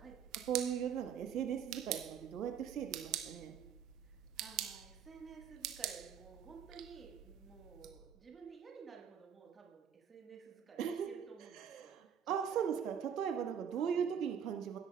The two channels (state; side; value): quieter; left; 8.2 dB